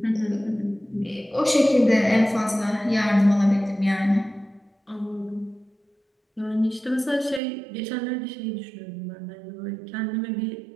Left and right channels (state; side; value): drops out; left; at 7.4 s